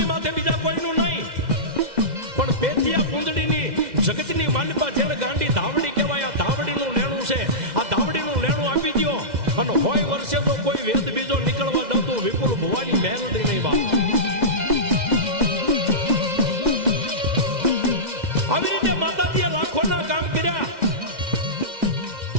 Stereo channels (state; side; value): late; left; 2.0 ms